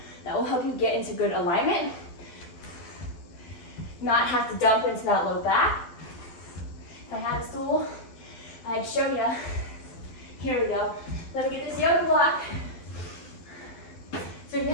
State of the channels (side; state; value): right; late; 12 ms